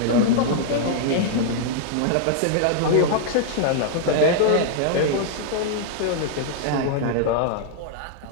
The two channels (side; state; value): both; different; correlation -0.01